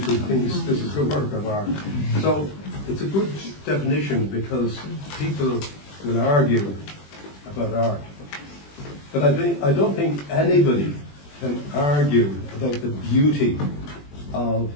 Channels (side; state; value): right; late; 20 ms